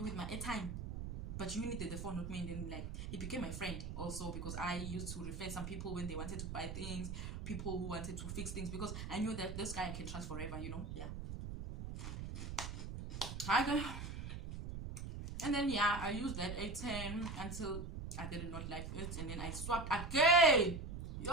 with my airtime, but you needed the phone, not me. And then like he became my friend also, because I used to refer some people when they wanted to buy things, people who wanted to fix things, because I knew that this guy I can trust forever, you know. Yeah. And then yeah, I used that A10 until I did not like it, and then I swapped again.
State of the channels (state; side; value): noise; right; rumble, 6 dB below the sound